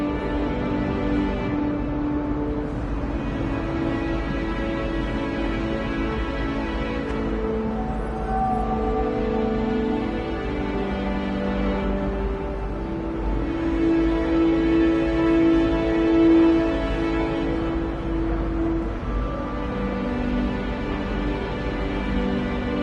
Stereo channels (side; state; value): both; identical; correlation 1.00